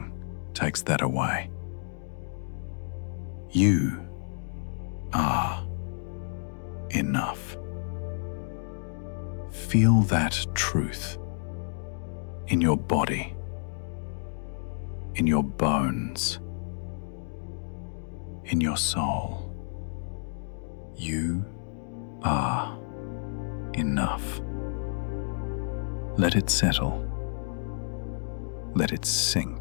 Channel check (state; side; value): silent; right; digital silence